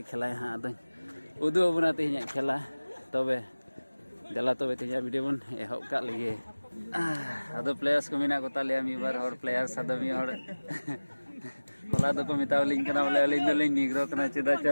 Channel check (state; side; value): inverted; both; correlation -1.00